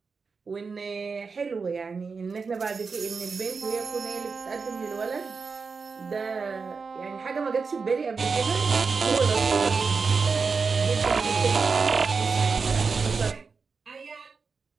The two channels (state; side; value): quieter; left; 4.9 dB